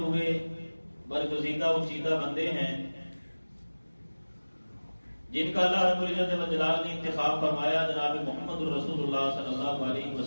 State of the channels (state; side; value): inverted; both; correlation -1.00